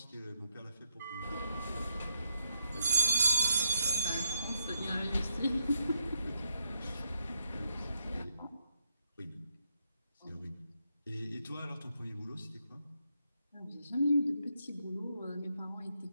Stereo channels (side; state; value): both; inverted; correlation -0.78